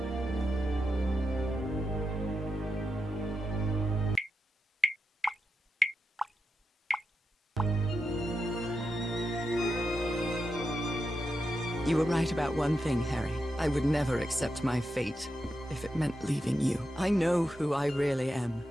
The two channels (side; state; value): both; normal; correlation 0.88